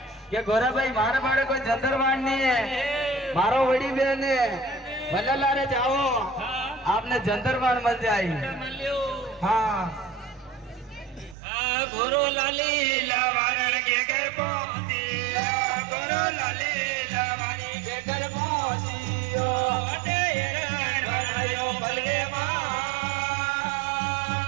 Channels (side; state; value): left; drops out; at 11.4 s